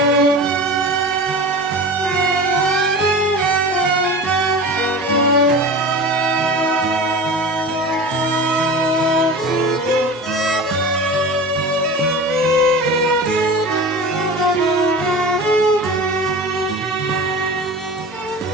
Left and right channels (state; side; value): normal; both; correlation 0.33